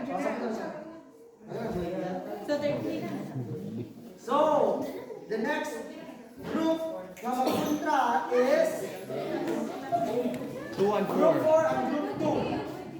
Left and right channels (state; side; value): identical; both; correlation 1.00